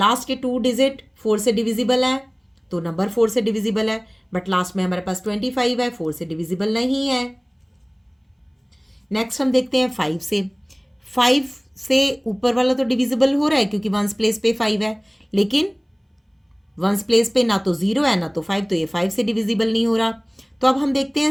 के 2 डिजिट 4 से डिविजिबल है तो नंबर 4 से डिविजिबल है, बट लास्ट में हमारे पास 25 है, 4 से डिविजिबल नहीं है। नेक्स्ट हम देखते हैं 5 से। 5 से ऊपर वाला तो डिविजिबल हो रहा है क्योंकि वंस प्लेस पे 5 है, लेकिन वंस प्लेस पे ना तो 0 है ना तो 5, तो ये 5 से डिविजिबल नहीं हो रहा। तो अब हम देखते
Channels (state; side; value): identical; both; correlation 1.00